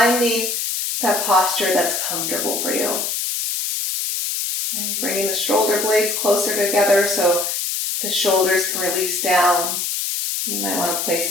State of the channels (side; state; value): left; noise; hiss, 1 dB below the sound